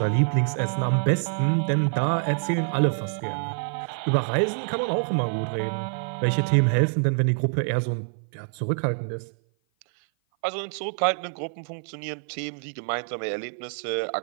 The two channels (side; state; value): left; silent; 56 dB below the other